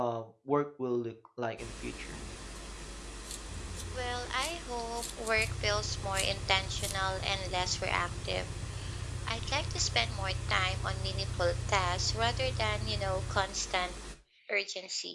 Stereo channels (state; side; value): identical; both; correlation 1.00